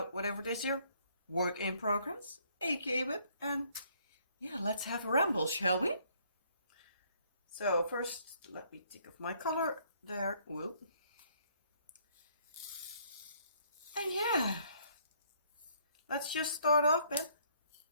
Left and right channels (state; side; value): inverted; both; correlation -0.65